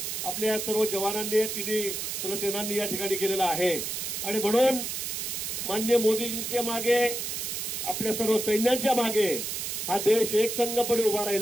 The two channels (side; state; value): right; noise; hiss, 3 dB below the sound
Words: आपल्या या सर्व जवानांनी, तिन्ही सेनांनी या ठिकाणी केलेला आहे। आणि म्हणून माननीय मोदीजींच्या मागे, आपल्या सर्व सैन्यांच्या मागे हा देश एकसंघपणे उभा